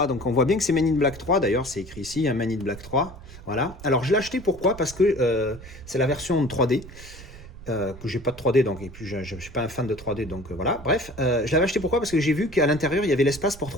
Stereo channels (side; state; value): right; noise; rumble, 17 dB below the sound